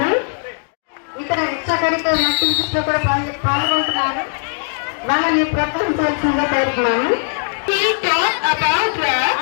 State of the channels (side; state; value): right; silent; digital silence